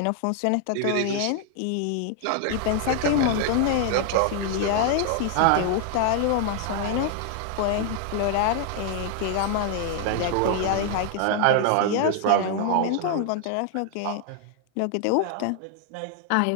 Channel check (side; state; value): both; different; correlation 0.00